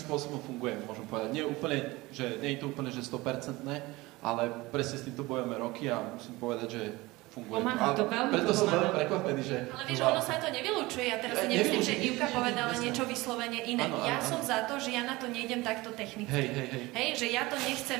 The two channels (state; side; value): quieter; left; 21.1 dB